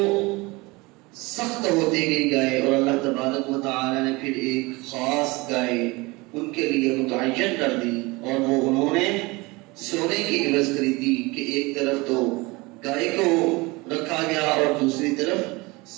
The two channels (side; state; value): left; quieter; 23.9 dB